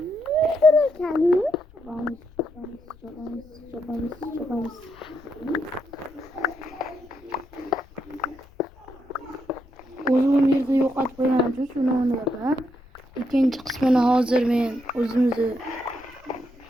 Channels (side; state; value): left; noise; rumble, 24 dB below the sound